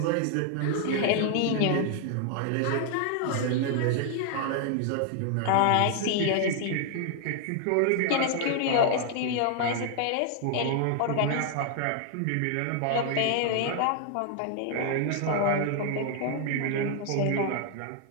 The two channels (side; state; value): both; different; correlation 0.00